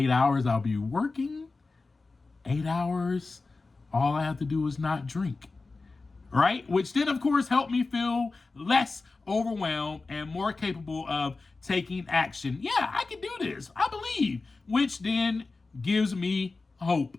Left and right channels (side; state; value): right; quieter; 3.7 dB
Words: hours I'll be working, 8 hours all I have to do is not drink. Right? Which then, of course, helped me feel less overwhelmed and more capable of taking action. Yeah, I can do this. I believe. Which then gives me hope.